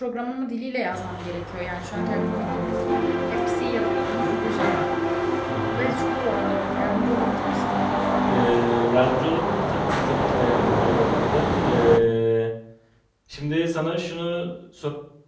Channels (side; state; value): both; identical; correlation 1.00